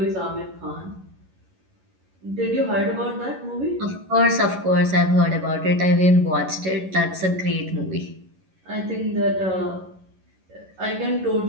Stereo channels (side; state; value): left; late; 11 ms